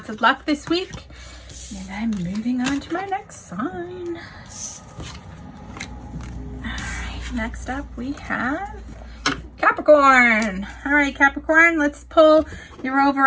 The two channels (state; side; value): identical; both; correlation 1.00